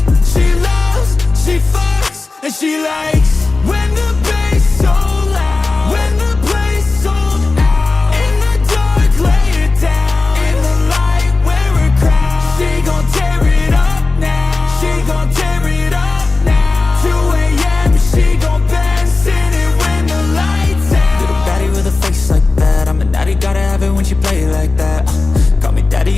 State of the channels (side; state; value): right; quieter; 3.6 dB